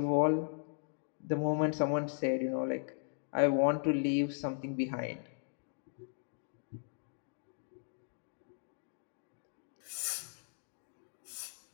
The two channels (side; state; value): right; silent; digital silence